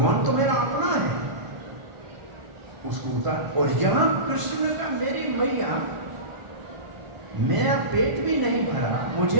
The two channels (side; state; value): left; late; 1.0 ms